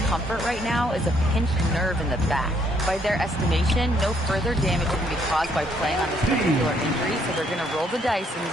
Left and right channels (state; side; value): normal; both; correlation 0.69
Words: right now is a pinched nerve in the back. By their estimation, no further damage can be caused by playing on this particular injury, so they're going to roll the dice and